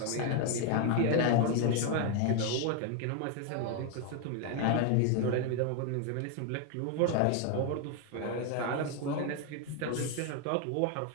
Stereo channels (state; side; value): different; both; correlation 0.01